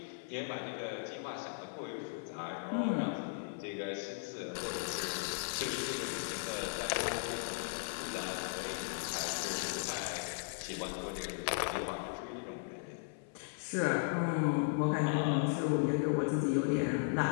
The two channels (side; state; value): right; silent; 53 dB below the other